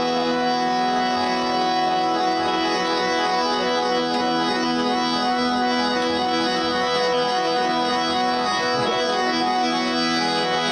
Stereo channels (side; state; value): both; identical; correlation 1.00